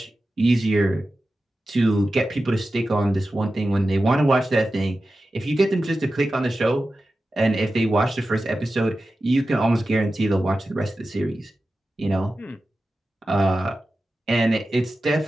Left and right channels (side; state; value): both; normal; correlation 0.93